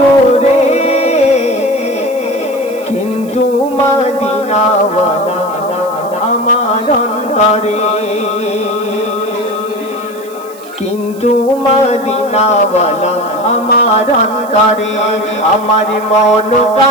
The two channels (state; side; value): noise; right; hiss, 22 dB below the sound